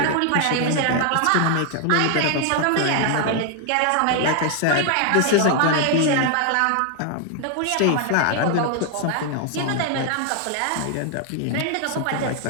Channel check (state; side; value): different; both; correlation 0.00